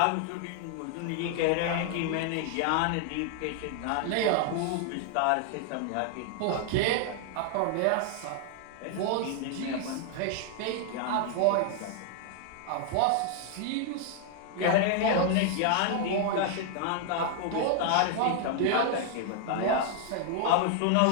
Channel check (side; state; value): both; different; correlation 0.00